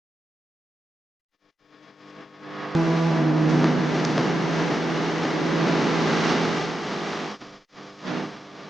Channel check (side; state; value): both; normal; correlation 0.89